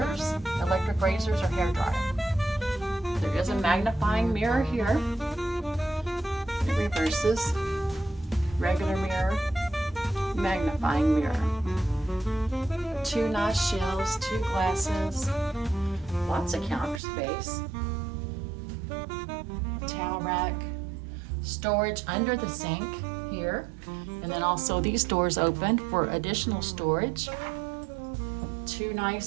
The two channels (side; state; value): left; drops out; at 17.0 s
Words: electric razors or hair dryer. There is a magnifying mirror here. It reverses. Regular mirror, magnifying mirror. 2 nice shelves, 2 glasses, lots of counter space. Towel rack, storage under the sink here. And then also these doors open for additional storage. 2